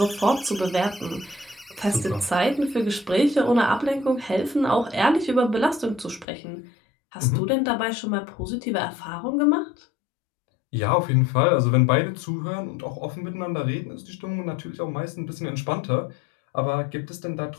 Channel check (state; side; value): drops out; right; at 6.2 s